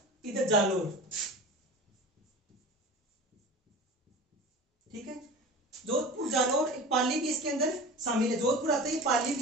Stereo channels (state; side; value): normal; both; correlation 0.35